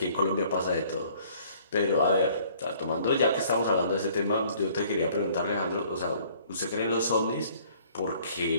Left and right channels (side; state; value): both; inverted; correlation -0.57